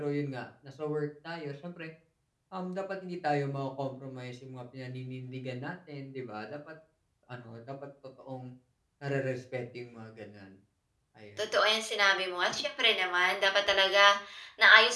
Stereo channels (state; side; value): identical; both; correlation 1.00